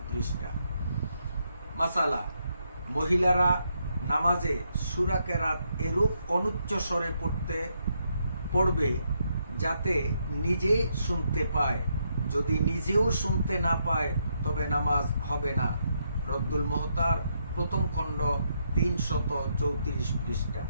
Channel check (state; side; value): inverted; both; correlation -0.78